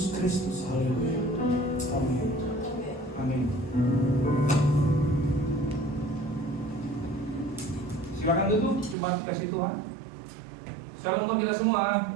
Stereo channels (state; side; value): drops out; left; at 9.0 s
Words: Kristus. Haleluya. Amin. Amin. Silakan duduk, cuma kasih Tuhan. Shalom buat kita